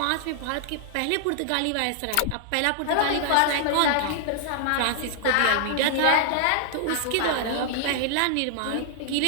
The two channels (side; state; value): both; different; correlation 0.00